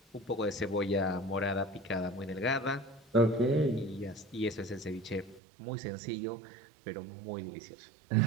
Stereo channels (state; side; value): drops out; left; at 5.4 s